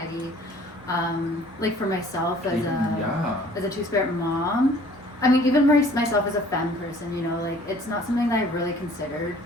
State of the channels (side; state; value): both; normal; correlation 0.54